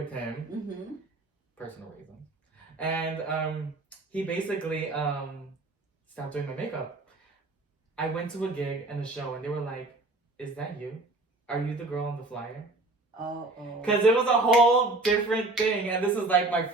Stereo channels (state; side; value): quieter; left; 3.0 dB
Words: him, personal reasons, and he basically stopped doing my makeup. I went to a gig and a show, and they were like, "Is that you? Are you the girl on the flyer?" Oh. Because it was a whole different thing, and this was like my